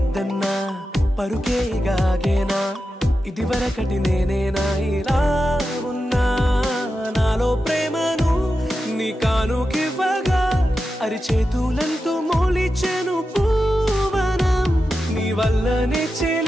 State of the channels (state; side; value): normal; both; correlation 0.91